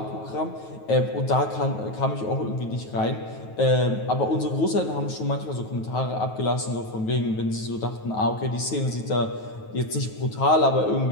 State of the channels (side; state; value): right; late; 9.3 ms